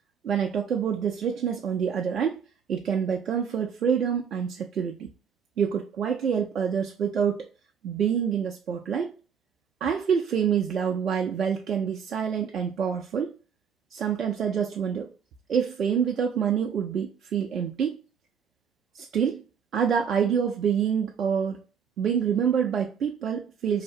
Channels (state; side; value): quieter; left; 7.3 dB